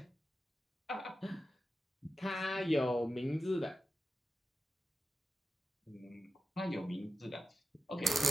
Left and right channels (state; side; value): normal; both; correlation 0.92